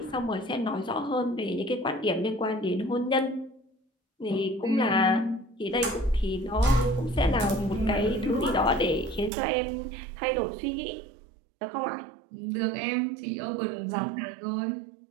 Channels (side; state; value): left; drops out; at 9.3 s